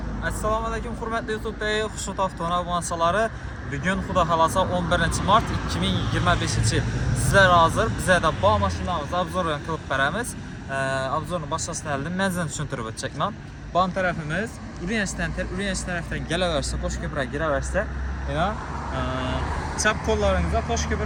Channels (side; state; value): both; identical; correlation 1.00